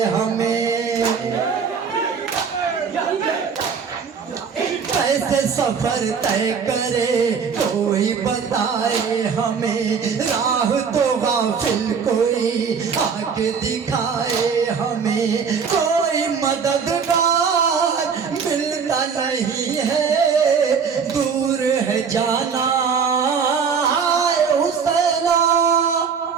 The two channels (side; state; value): left; quieter; 6.2 dB